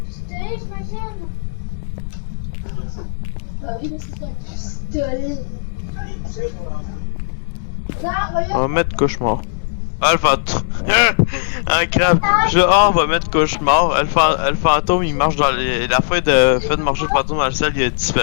j'imagine. Bah oui, mais c'est un pistolet. Là, On regarde. va mettre cauchemar. Ah, le fantôme. Un crabe. On va mettre cauchemar. Le fantôme, il marche dans les... La fin de marcher le fantôme dans le ciel, il a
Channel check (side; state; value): right; silent; digital silence